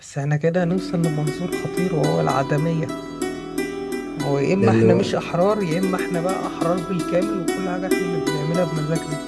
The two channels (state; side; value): identical; both; correlation 1.00